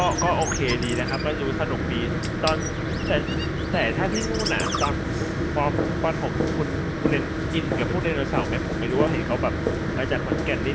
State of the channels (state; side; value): identical; both; correlation 1.00